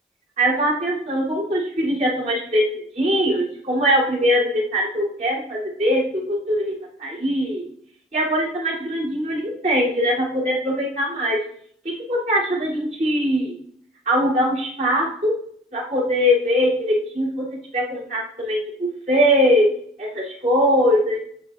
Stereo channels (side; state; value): both; normal; correlation 0.44